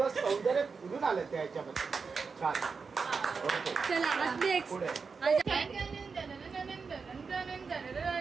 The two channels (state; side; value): quieter; left; 5.1 dB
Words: सौंदर्य फुलून आलं त्या ह्याच्यामध्ये. छान. ओके पुढे